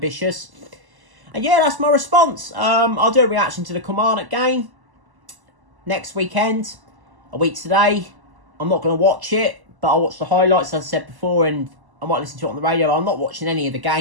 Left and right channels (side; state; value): left; late; 1.0 ms